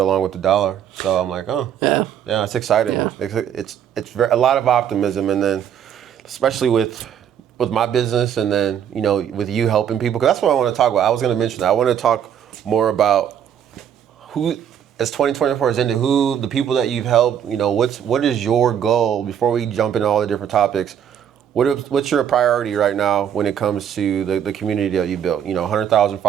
with the dollar. So I'm like, yeah, it's exciting. Yeah. It's a lot of optimism, and then especially with my business, and then with you helping people, because that's what I want to talk about. I was going to mention that. I want to talk more about who, as 2024 is ended, who the people that you've helped. What is your goal before we jump into all the different topics. What's your priority right now when it comes to the community that you built? 100,000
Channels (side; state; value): left; quieter; 9.1 dB